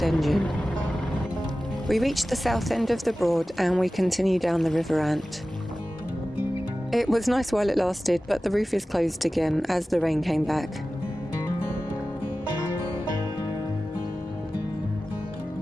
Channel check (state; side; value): normal; both; correlation 0.96